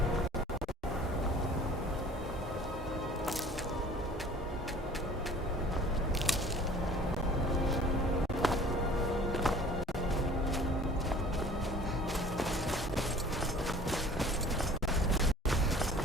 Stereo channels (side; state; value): both; normal; correlation 0.48